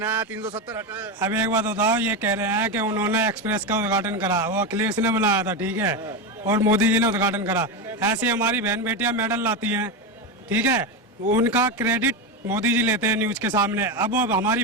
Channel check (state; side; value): normal; both; correlation 0.14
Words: 370 हटा। अब एक बात बताओ, ये कह रहे हैं कि उन्होंने एक्सप्रेस का उद्घाटन करा, वो अखिलेश ने बनाया था, ठीक है, और मोदी जी ने उद्घाटन करा। ऐसी हमारी बहन बेटियां मेडल लाती हैं, ठीक है, उनका क्रेडिट मोदी जी लेते हैं न्यूज के सामने। अब वो हमारी